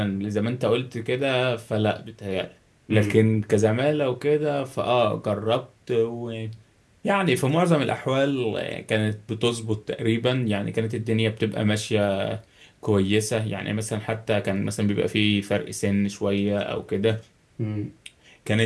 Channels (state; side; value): identical; both; correlation 1.00